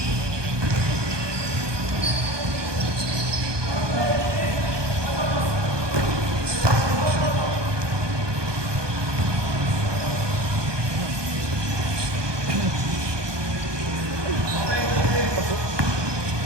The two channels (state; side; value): late; left; 1.2 ms